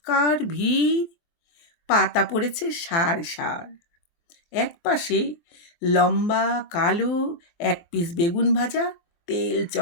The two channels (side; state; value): right; late; 23 ms